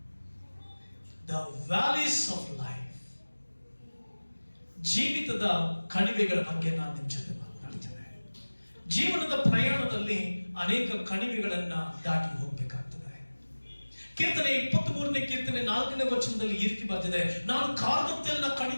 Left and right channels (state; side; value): inverted; both; correlation -1.00